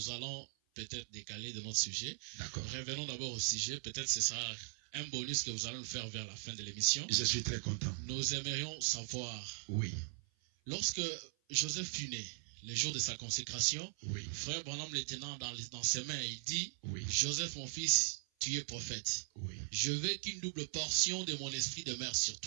allons peut-être décaler de notre sujet. D'accord. Revenons d'abord au sujet. Peut-être c'est ça un bonus que vous allez nous faire vers la fin de l'émission. Je suis très content. Nous aimerions savoir. Oui. Lorsque Joseph fut né, le jour de sa consécration, Oui. frère Branham le tenant dans ses mains, il dit, Oui. Joseph mon fils, tu es prophète. Oui. Je veux qu'une double portion de mon esprit demeure sur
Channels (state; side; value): silent; left; 51 dB below the other